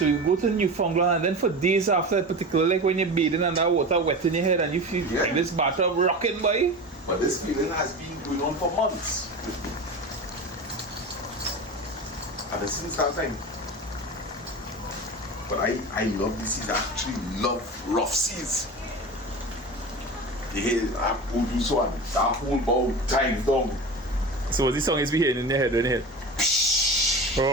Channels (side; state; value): both; normal; correlation 0.29